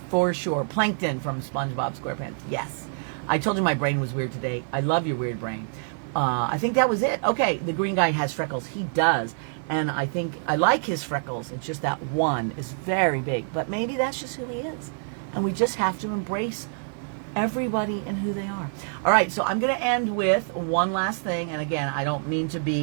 For sure. Plankton from SpongeBob SquarePants, yes. I told you my brain was weird today. I love your weird brain. I think that was it. Okay, the green guy has freckles. He does. And I think I like his freckles. It's just that one is very big. But maybe that's just who he is. And we just have to embrace everybody and who they are. All right, so I'm going to end with one last thing. And again, I don't mean to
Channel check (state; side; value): silent; left; digital silence